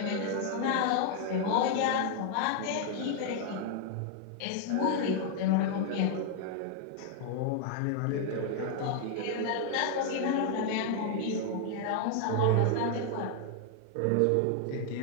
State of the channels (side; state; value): both; different; correlation 0.00